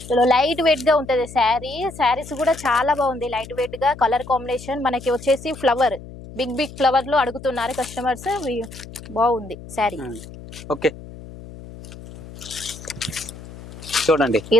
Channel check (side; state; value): left; noise; hum, 15 dB below the sound